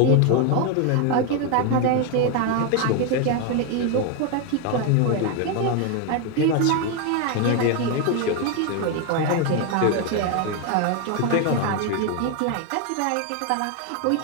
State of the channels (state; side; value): different; both; correlation 0.01